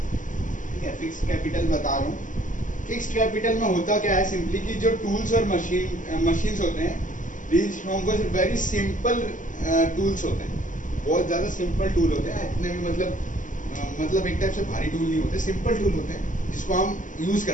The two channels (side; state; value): right; late; 0.37 ms